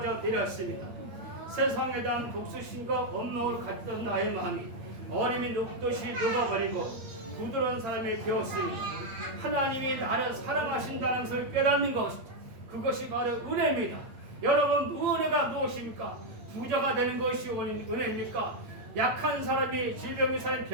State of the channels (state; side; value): late; left; 8.7 ms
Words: 내렸습니다. 세상에 대한 복수심과 원망을 갖던 나의 마음이 얼음이 녹듯이 녹아버리고 부드러운 사람이 되었으니 하나님이 나를 사랑하신다는 것을 깨닫는 것, 그것이 바로 은혜입니다. 여러분, 은혜가 무엇입니까? 부자가 되는 것이 은혜입니까? 약한 사람이 질병의 사람이